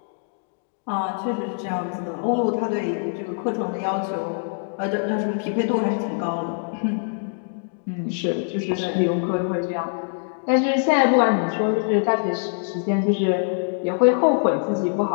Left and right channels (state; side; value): silent; right; 63 dB below the other